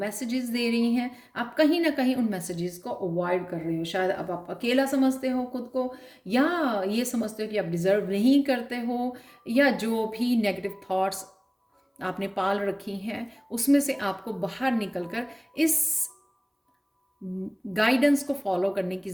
दे रही हैं। आप कहीं ना कहीं उन मैसेजेस को अवॉइड कर रहे हो। शायद अब आप अकेला समझते हो खुद को, या ये समझते हो कि आप डिजर्व नहीं करते हो, या जो भी नेगेटिव थॉट्स आपने पाल रखी हैं उसमें से आपको बाहर निकलकर इस गाइडेंस को फॉलो करने की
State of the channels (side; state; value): both; identical; correlation 1.00